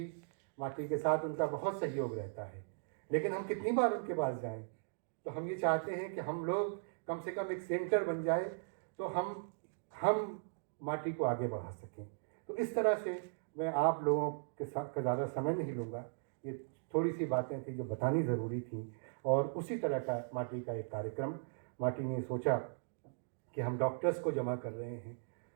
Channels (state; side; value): silent; left; digital silence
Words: माटी के साथ उनका बहुत सहयोग रहता है, लेकिन हम कितनी बार उनके पास जाएं? तो हम ये चाहते हैं कि हम लोग कम से कम एक सेंटर बन जाए तो हम माटी को आगे बढ़ा सकें। तो इस तरह से मैं आप लोगों के साथ का ज़्यादा समय नहीं लूँगा, ये थोड़ी सी बातें थी जो बतानी ज़रूरी थी। और उसी तरह का माटी का एक कार्यक्रम माटी ने सोचा कि हम डॉक्टर्स को जमा कर रहे हैं,